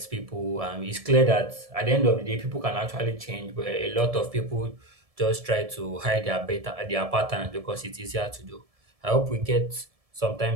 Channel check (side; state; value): left; late; 1.7 ms